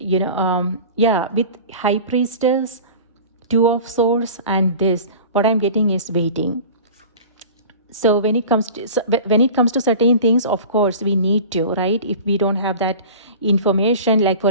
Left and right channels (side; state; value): both; inverted; correlation -0.38